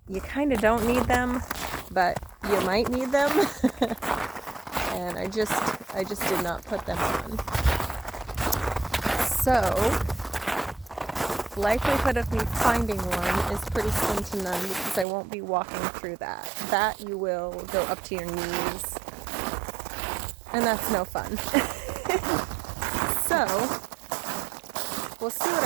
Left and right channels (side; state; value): left; drops out; at 15.1 s